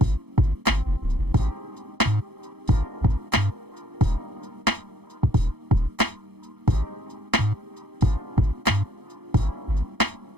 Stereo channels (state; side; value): late; left; 0.98 ms